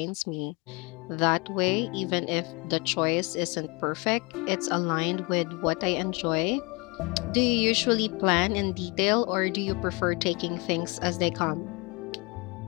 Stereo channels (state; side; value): quieter; right; 28.8 dB